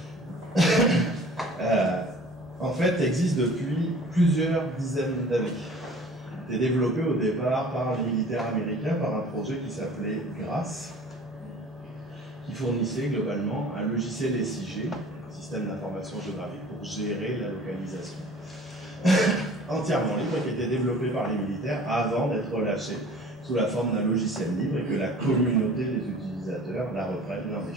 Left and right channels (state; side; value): normal; both; correlation 0.46